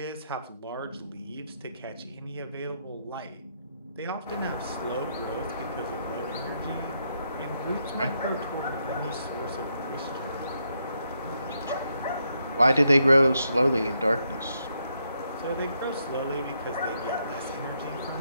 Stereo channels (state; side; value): inverted; both; correlation -0.78